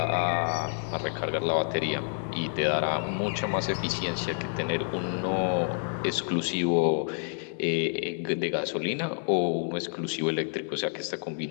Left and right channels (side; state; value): right; silent; 59 dB below the other